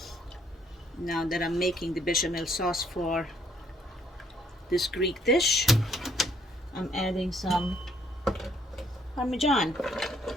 Now that I'm making the bechamel sauce for this Greek dish, I'm adding some Parmesan.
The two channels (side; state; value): both; normal; correlation 0.66